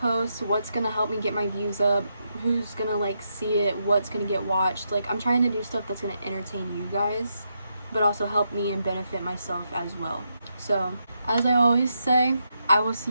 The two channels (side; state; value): both; inverted; correlation -0.82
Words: what's gonna help me get my views up, who's gonna like see it, what's gonna get watched. Like, I'm trying to do stuff that's gonna entertain you guys, but also help me and benefit myself as well. So, as I always say, I will